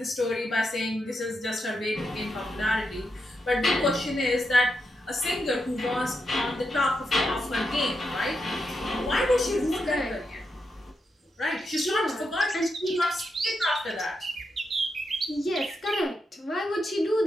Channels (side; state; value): both; normal; correlation 0.84